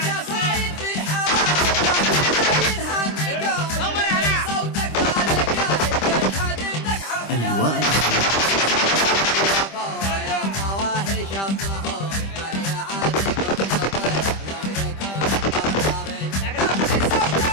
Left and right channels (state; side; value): late; right; 25 ms